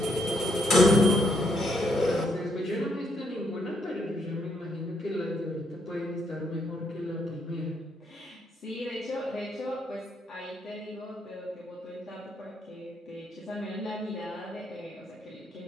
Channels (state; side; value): normal; both; correlation 0.74